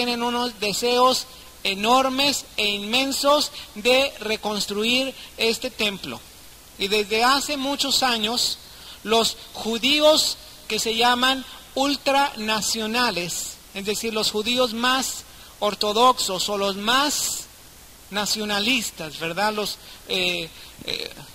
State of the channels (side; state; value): both; identical; correlation 1.00